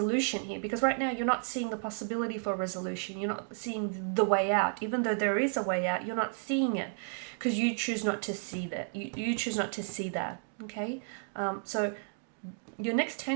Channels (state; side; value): silent; left; 56 dB below the other